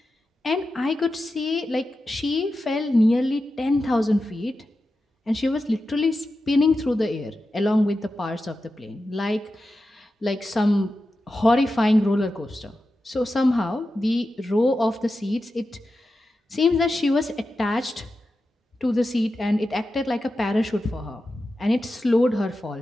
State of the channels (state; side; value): normal; both; correlation 0.91